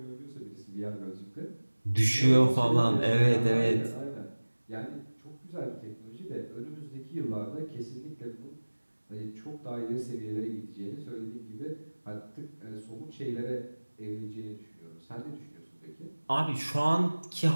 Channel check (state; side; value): inverted; both; correlation -1.00